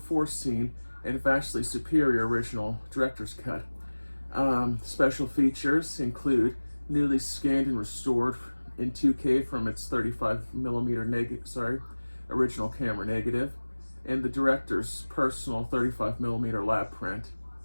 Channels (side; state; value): both; inverted; correlation -1.00